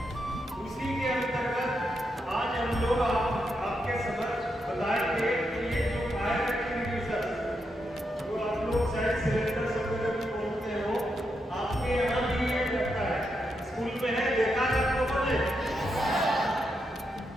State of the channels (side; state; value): both; normal; correlation 0.83